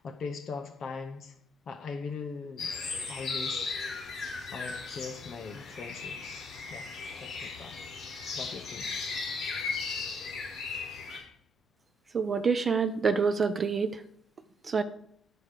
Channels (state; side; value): normal; both; correlation 0.72